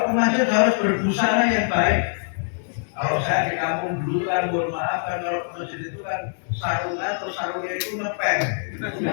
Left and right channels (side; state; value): right; silent; 63 dB below the other